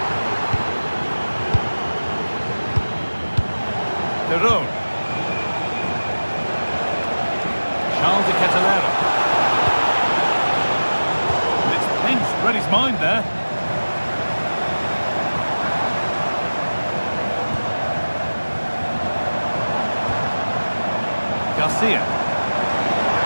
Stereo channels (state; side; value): inverted; both; correlation -1.00